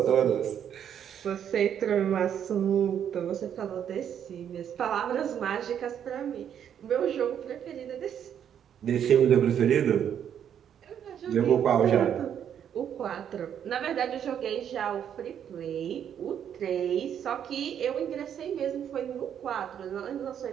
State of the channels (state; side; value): quieter; left; 9.0 dB